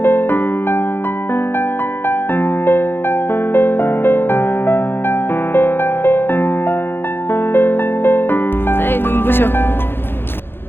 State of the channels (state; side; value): late; right; 0.10 ms